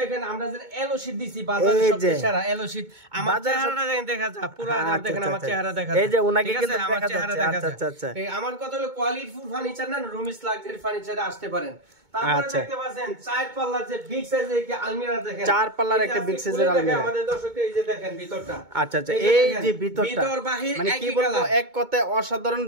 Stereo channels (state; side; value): late; left; 2.2 ms